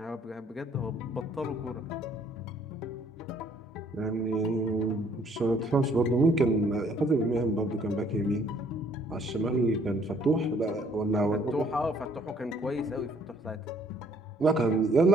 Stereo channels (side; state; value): both; normal; correlation 0.62